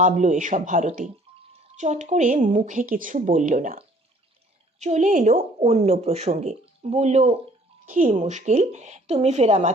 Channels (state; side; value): normal; both; correlation 0.57